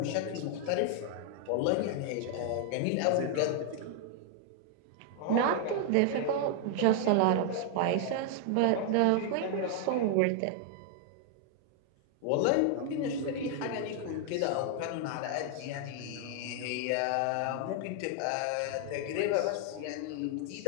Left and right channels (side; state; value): both; different; correlation 0.00